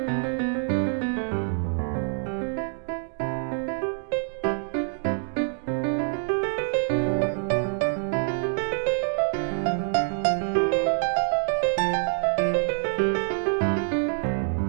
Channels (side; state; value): left; silent; digital silence